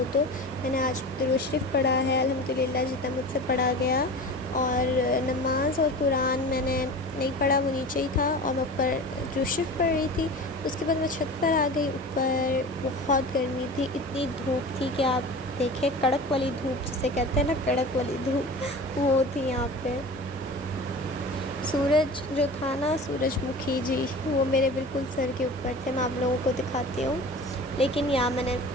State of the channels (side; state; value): both; normal; correlation 0.35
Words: तो। मैंने आज दुरूद शरीफ पढ़ा है अल्हम्दुलिल्लाह, जितना मुझसे पढ़ा गया। और नमाज और कुरान मैंने नहीं पढ़ा, वो नीचे ही था और मैं ऊपर दुरूद शरीफ पढ़ रही थी। उसके बाद मैं छत पर आ गई। ऊपर बहुत गर्मी थी, इतनी धूप थी कि आप देखें, कड़क वाली धूप जिसे कहते हैं ना, कड़क वाली धूप, वो थी यहाँ पे। सूरज जो था ना, सूरजमुखी जी, वो मेरे बिल्कुल सर के ऊपर थे। मैं आप लोगों को दिखाती हूँ। लेकिन यहाँ मैंने